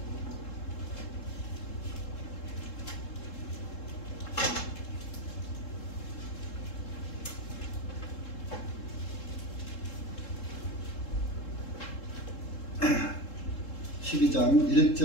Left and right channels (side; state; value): right; late; 3.7 ms